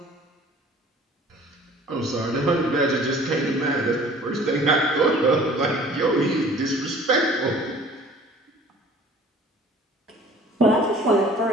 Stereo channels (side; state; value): both; normal; correlation 0.49